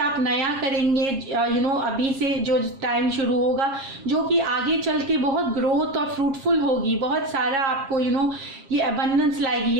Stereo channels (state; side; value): late; left; 7.4 ms